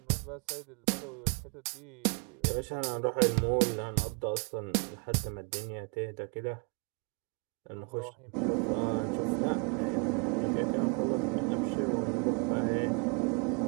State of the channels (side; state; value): left; quieter; 36.6 dB